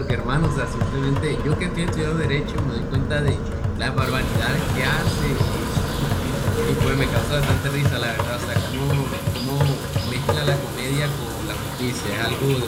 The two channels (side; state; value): both; identical; correlation 1.00